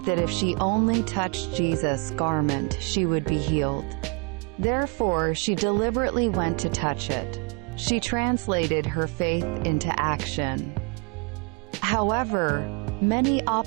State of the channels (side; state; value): left; quieter; 33.3 dB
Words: that if she only touched Jesus' garment, she would be healed. Therefore, she deliberately went to touch it. She translated her faith into action. However, many